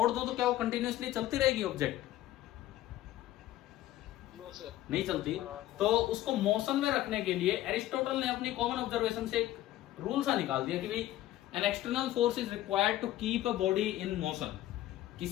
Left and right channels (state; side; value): quieter; right; 14.5 dB